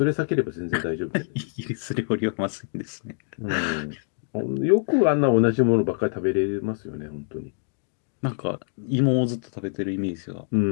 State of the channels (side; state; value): right; silent; digital silence